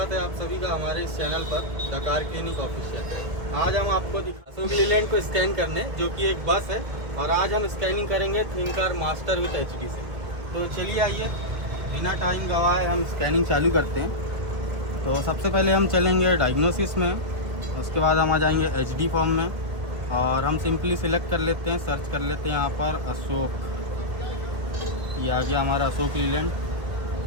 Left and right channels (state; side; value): late; left; 1.5 ms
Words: है आप सभी का हमारे इस चैनल पर द कार क्लिनिक ऑफिशियल। आज हम आपको अशोक लीलैंड को स्कैन करने, जो कि एक बस है, और आज हम स्कैनिंग करेंगे think car master with HD से। तो चलिए आइए, बिना टाइम गवाए हम स्कैनिंग चालू करते हैं। तो सबसे पहले हम चलेंगे डायग्नोसिस में, उसके बाद हम आ जाएंगे एचडी फॉर्म में, और हम सिंपली सिलेक्ट कर लेते हैं, सर्च कर लेते हैं यहाँ पर अशोक। ये आ गया हमारा अशोक लीलैंड।